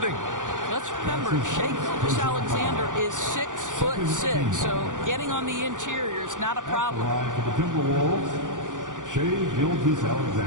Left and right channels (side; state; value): left; late; 0.87 ms